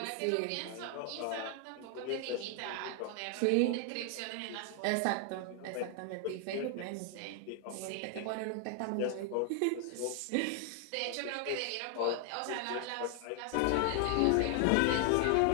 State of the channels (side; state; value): both; different; correlation 0.00